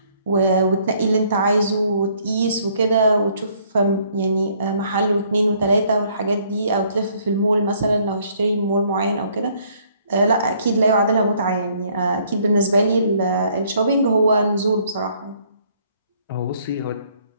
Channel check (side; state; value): both; inverted; correlation -0.64